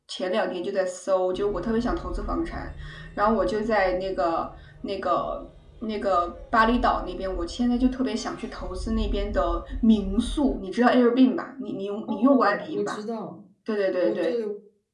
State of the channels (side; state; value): both; identical; correlation 1.00